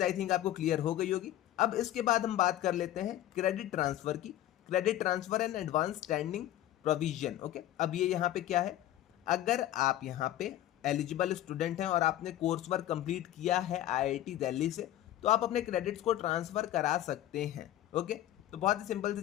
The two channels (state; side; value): quieter; right; 13.3 dB